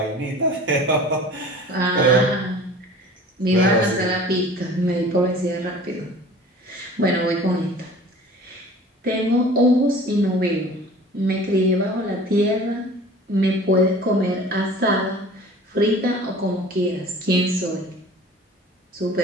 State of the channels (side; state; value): both; normal; correlation 0.44